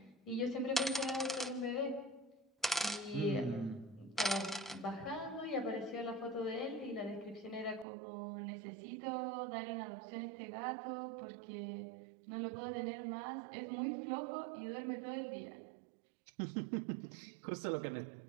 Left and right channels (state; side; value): drops out; left; at 7.9 s